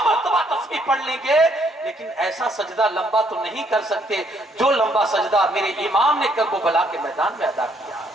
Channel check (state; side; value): normal; both; correlation 0.69